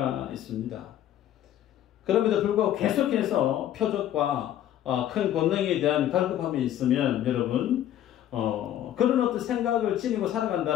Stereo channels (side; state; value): right; quieter; 11.7 dB